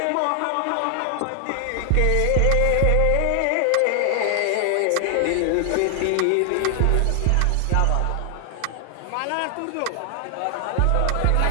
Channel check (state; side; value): different; both; correlation 0.00